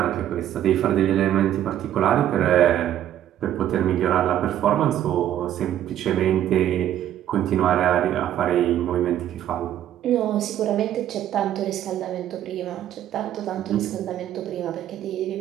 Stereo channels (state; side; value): quieter; left; 11.5 dB